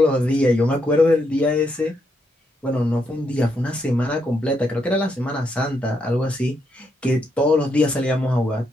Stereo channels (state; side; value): normal; both; correlation 0.79